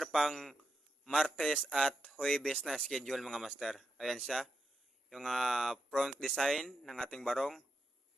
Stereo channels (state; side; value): normal; both; correlation 0.85